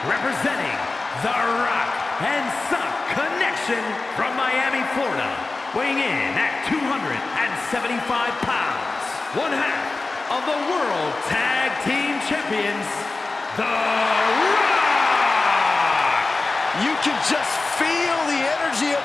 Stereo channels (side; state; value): right; quieter; 3.5 dB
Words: representing the Rock and Sock Connection from Miami, Florida, weighing in at 275 pounds, one half of the World Tag Team Champions, The Rock! You can just feel the energy